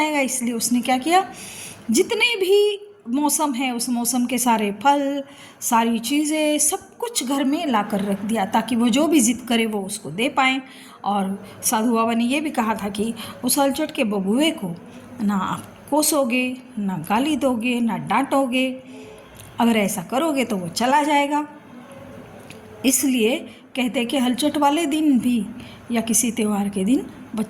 इसलिए उसने क्या किया, जितने भी मौसम है उस मौसम के सारे फल, सारी चीज़ें, सब कुछ घर में ला कर रख दिया, ताकि वो जो भी जिद करे वो उसको दे पाएँ। और साधु बाबा ने ये भी कहा था कि उस हलचट के बबुए को ना आप कोसोगे, ना गाली दोगे, ना डांटोगे, अगर ऐसा करोगे तो वो चला जाएगा। इसलिए कहते हैं कि हलचट वाले दिन भी या किसी त्यौहार के दिन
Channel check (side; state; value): both; identical; correlation 1.00